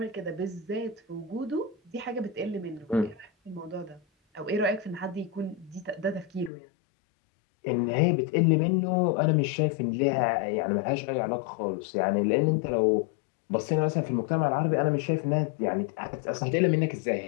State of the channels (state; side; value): drops out; right; at 6.5 s